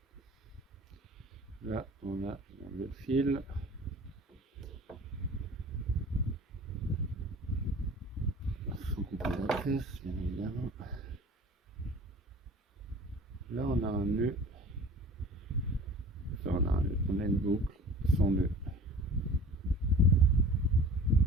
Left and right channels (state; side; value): normal; both; correlation 0.44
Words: Là, on a le fil. Sans couper la tresse, bien évidemment. Là, on a un nœud. Là, on a une boucle sans nœud.